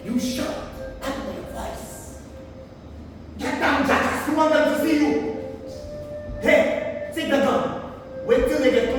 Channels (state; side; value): identical; both; correlation 1.00